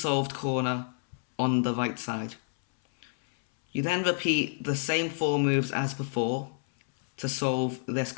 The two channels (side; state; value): right; silent; 59 dB below the other